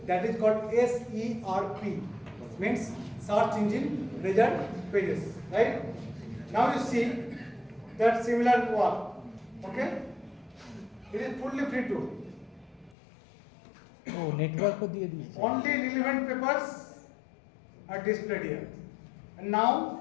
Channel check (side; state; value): right; drops out; at 13.0 s